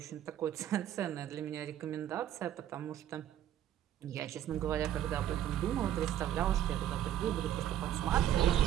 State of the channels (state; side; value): quieter; left; 11.2 dB